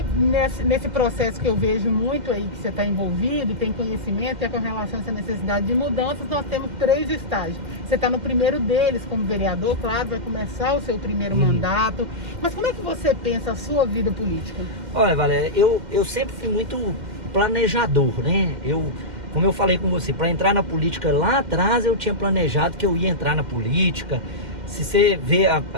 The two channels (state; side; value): late; left; 2.1 ms